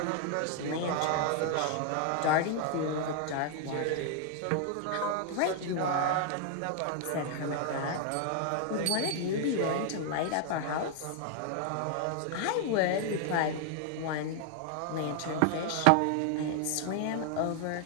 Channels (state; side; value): different; both; correlation 0.00